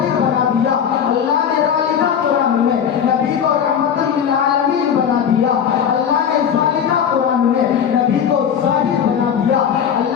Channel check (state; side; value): quieter; right; 8.1 dB